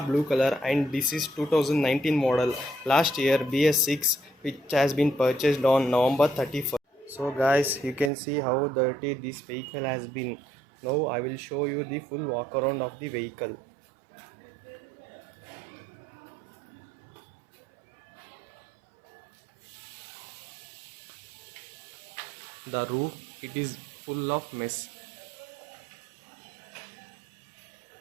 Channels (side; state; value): left; drops out; at 8.1 s